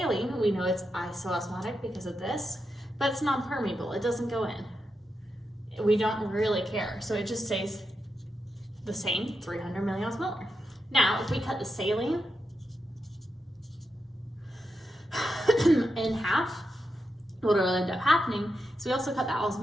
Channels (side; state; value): both; normal; correlation 0.86